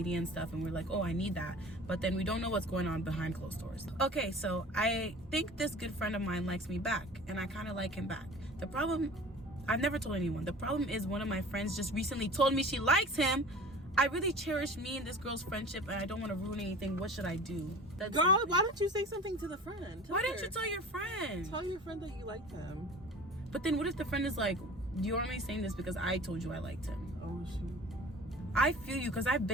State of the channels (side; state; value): both; normal; correlation 0.41